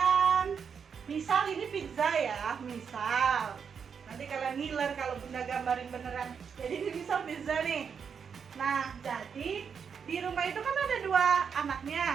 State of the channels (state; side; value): quieter; left; 6.6 dB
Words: Misal ini pizza ya, misal. Nanti kalian ngiler kalau Bunda gambarin beneran. Jadi ini misal pizza nih. Nah, jadi di rumah itu kan ada dua